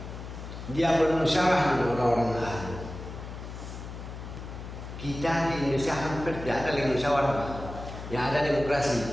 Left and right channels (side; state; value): left; noise; hum, 10 dB below the sound